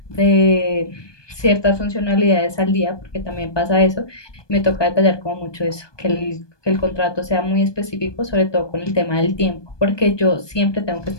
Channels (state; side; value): late; right; 1.2 ms